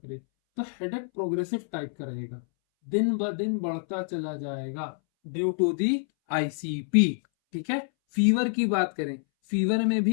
करें तो हेडेक प्रोग्रेसिव टाइप का रहेगा, दिन ब दिन बढ़ता चला जाएगा ड्यू टू दी आईसीपी, ठीक है। फीवर की बात करें, फीवर में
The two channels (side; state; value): right; silent; 60 dB below the other